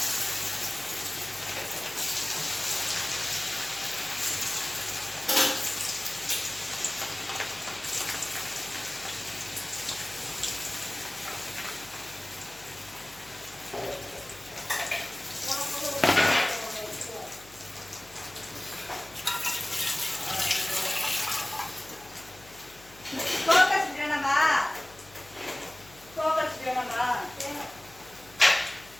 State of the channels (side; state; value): left; noise; hum, 23 dB below the sound